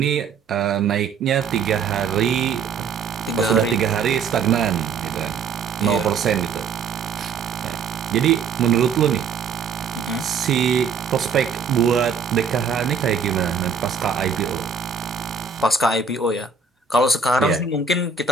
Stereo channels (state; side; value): quieter; left; 5.6 dB